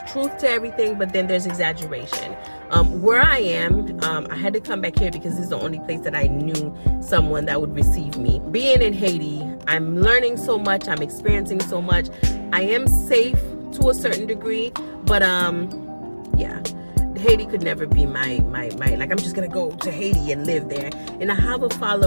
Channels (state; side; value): inverted; both; correlation -1.00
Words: truth to everything, but then there's exaggeration. Where I am, I had to come back here because this is the only place that I knew someone that would receive me. Being in Haiti, I'm learning so much. I'm experiencing so much. I am safe to a certain degree, but yeah. Haiti could never be my like, I'm just gonna go to Haiti and live there. And I have a